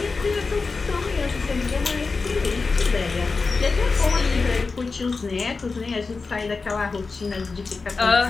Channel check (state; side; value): quieter; right; 4.2 dB